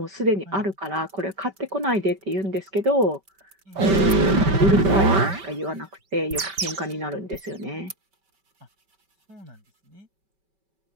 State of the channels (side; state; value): left; late; 5.2 ms